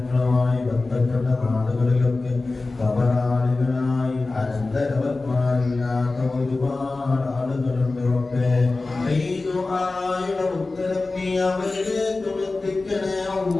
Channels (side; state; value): right; quieter; 3.4 dB